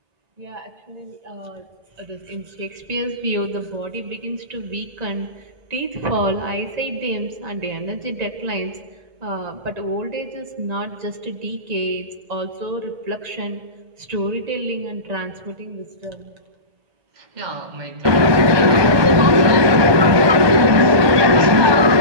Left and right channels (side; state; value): left; late; 1.2 ms